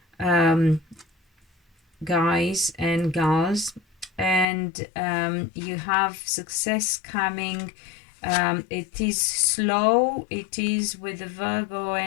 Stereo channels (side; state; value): right; drops out; at 4.5 s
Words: guys and gals. And you have success coming. It is slow. It is with the Virgo